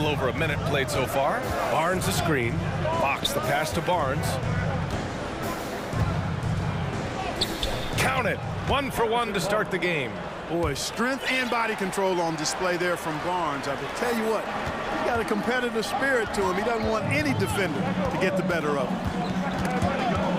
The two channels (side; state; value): both; identical; correlation 1.00